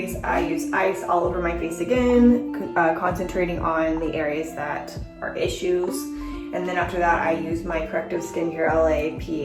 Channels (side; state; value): both; identical; correlation 1.00